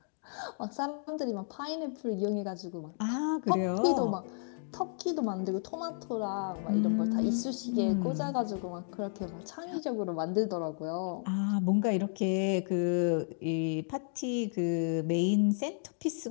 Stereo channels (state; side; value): silent; right; digital silence